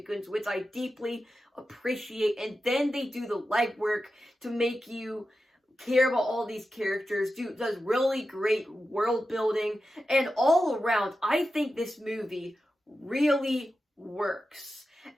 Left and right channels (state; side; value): normal; both; correlation 0.91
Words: which I deeply appreciate. And then they do the legwork to make you care about all these characters, does really great world building, and all around, I think this movie really works.